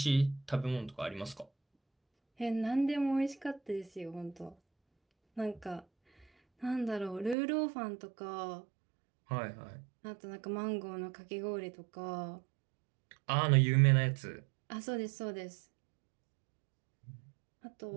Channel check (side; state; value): left; drops out; at 7.4 s